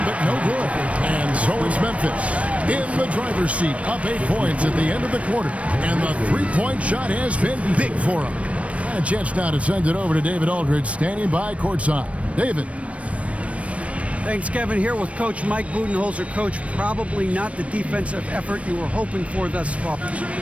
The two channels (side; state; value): left; late; 0.064 ms